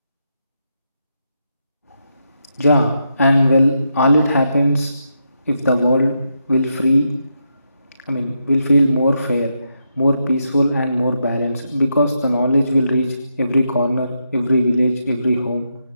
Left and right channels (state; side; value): inverted; both; correlation -0.83